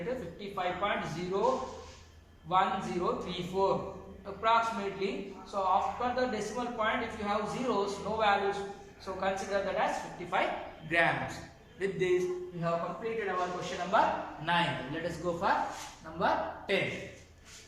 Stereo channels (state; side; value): identical; both; correlation 1.00